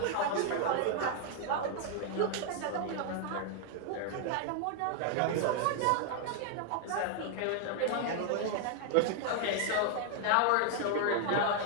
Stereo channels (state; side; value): different; both; correlation 0.00